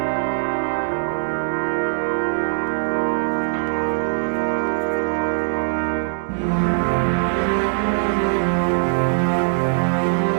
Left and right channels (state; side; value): silent; left; digital silence